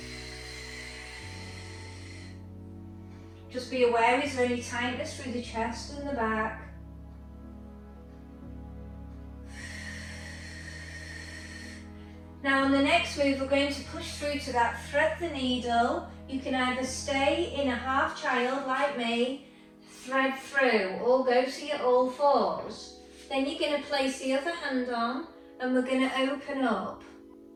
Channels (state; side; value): identical; both; correlation 1.00